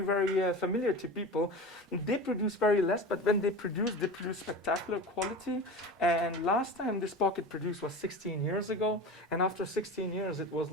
familiar to people. They produce very less, but when they produce spectacular quality. And last time this pocket produced was 16 years ago, and after 16 years it was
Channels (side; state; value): both; normal; correlation 0.31